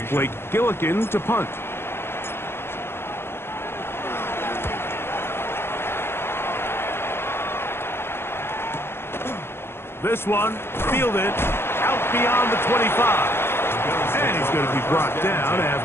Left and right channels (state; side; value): late; right; 0.12 ms